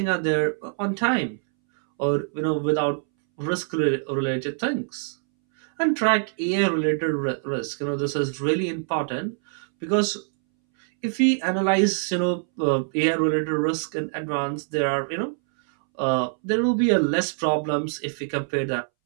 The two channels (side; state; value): left; silent; 62 dB below the other